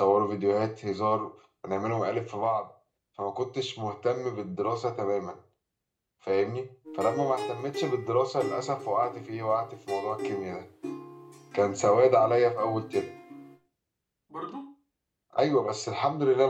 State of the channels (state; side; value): identical; both; correlation 1.00